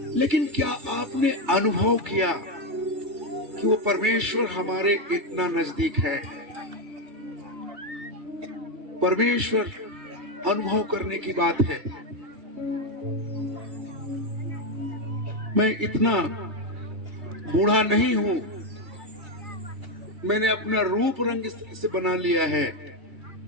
लेकिन क्या आपने अनुभव किया कि वो परमेश्वर हमारे इतना नजदीक है? परमेश्वर अनुभव करने की बात है। मैं इतना बूढ़ा नहीं हूं, मैंने अपना रूप रंग इस तरह से बना लिया है।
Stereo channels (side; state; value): left; late; 2.3 ms